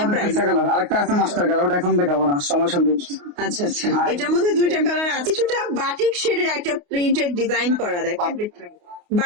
price. আরেকটা আছে মাস্টার কালার, ওটা এখন দেখাবো না, সময় সঙ্গে। আচ্ছা আচ্ছা, এটার মধ্যে দুইটা কালার আছে। কিছুটা বাটিক শেডের একটা প্রিন্টেড ডিজাইন করা দেখেন।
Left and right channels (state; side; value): late; left; 28 ms